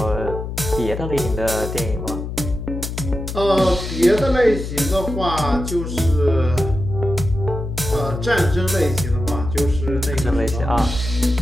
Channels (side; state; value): left; noise; hum, 6 dB below the sound